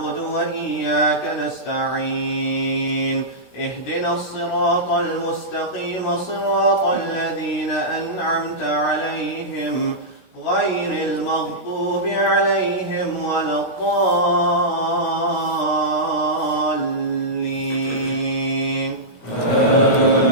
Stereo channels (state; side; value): late; right; 16 ms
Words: وإياك نستعين اهدنا الصراط المستقيم صراط الذين أنعمت عليهم غير المغضوب عليهم ولا الضالين.